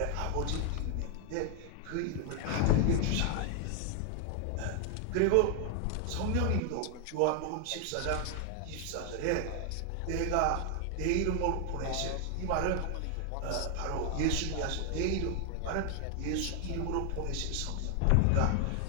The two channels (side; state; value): both; different; correlation 0.00